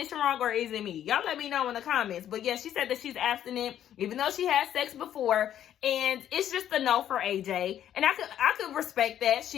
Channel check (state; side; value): quieter; right; 10.8 dB